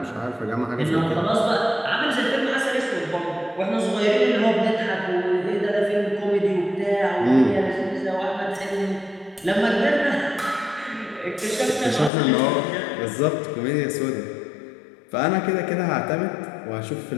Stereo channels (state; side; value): drops out; right; at 12.1 s